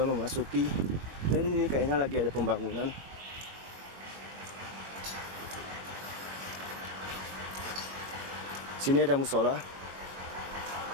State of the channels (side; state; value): left; late; 21 ms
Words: memasuki dan ini kayaknya lagi ada pembangunan. Sini ada musola.